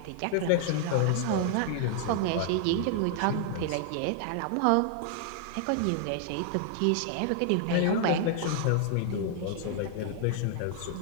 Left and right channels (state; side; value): different; both; correlation 0.00